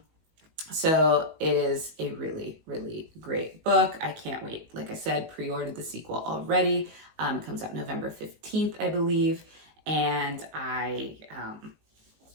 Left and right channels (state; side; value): late; left; 19 ms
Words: So it is a really, really great book. I can't wait. Like I said, pre-ordered the sequel already. It comes out November 15th, I believe, and I